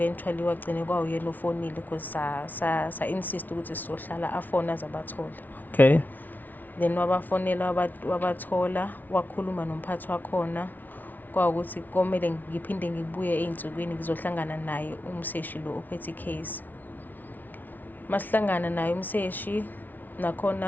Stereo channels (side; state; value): right; late; 0.082 ms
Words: wagcine kwawuyena ofonile because sa insist ukuthi sizohlala afona azabathola. Okay. Then wabafonela wabathola wakhuluma nomphathi wakhona kwawukuthi komele ngiphinde ngibuye einsukwini ngizohlangana naye umseshi lo ophethe case. Masihlangana naye umseshi